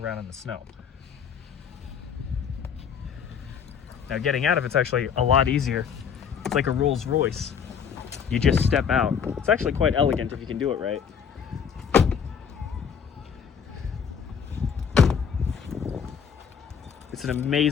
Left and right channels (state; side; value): quieter; right; 7.2 dB